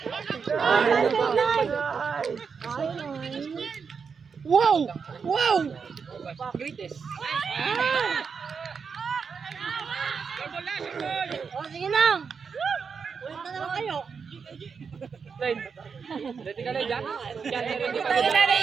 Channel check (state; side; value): quieter; left; 5.8 dB